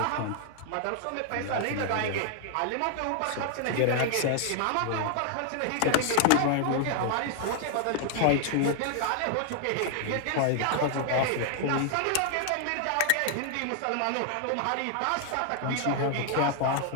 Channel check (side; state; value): both; different; correlation 0.00